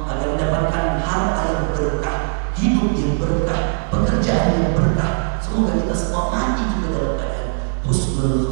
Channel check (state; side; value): silent; left; 58 dB below the other